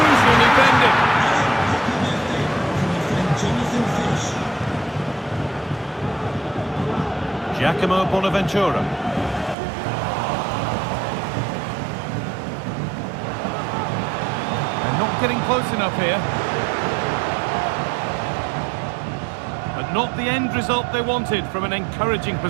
defending. Giacomo Bonaventura. They're not getting close enough here. But not the end result they wanted from an encouraging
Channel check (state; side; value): drops out; left; at 9.6 s